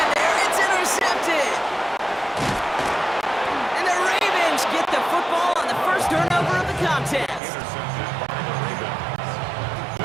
there. It's intercepted. And the Ravens get the football on the first turnover of the contest.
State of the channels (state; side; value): drops out; left; at 7.4 s